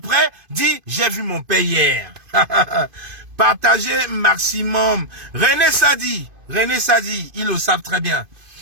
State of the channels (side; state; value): left; late; 2.5 ms